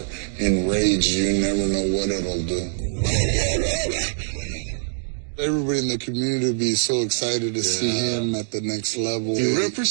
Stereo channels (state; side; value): silent; left; digital silence